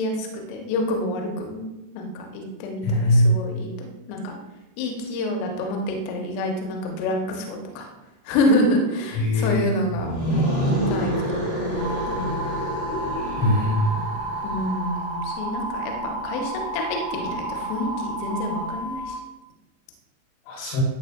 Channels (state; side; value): late; right; 37 ms